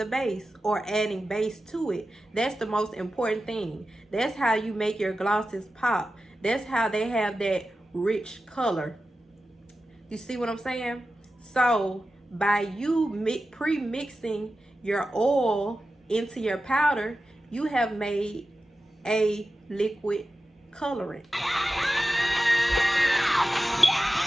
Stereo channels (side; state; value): both; normal; correlation 0.93